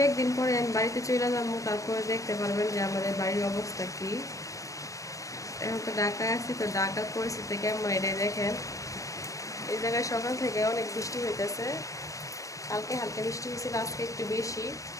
দিন পরে আমি বাড়িতে চলে যাবো, তারপরে দেখতে পারবেন যে আমাদের বাড়ির অবস্থা কি। এখন তো ঢাকায় আছি, তো ঢাকার পরিস্থিতি কেমন এটাই দেখেন। এই জায়গায় সকাল থেকে অনেক বৃষ্টি হইতেছে, কালকে হালকা বৃষ্টি হয়েছিল, আজকে একটু বেশি।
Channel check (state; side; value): late; right; 0.16 ms